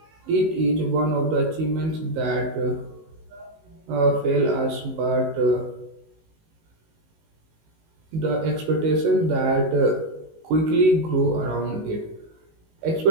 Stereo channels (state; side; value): late; left; 19 ms